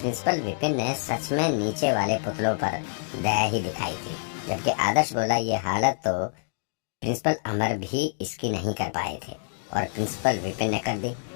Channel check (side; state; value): right; silent; digital silence